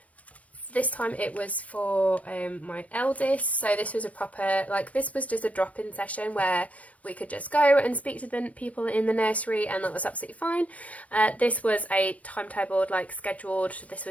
This time it was for my eldest, so this was a proper, like, this was just a drop-in session where we could just go and speak to the people in the nursery, and that was absolutely fine. This was a timetabled, like, scheduled, this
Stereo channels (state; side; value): late; right; 0.066 ms